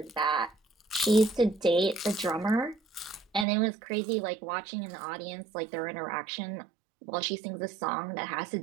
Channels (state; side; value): drops out; left; at 3.5 s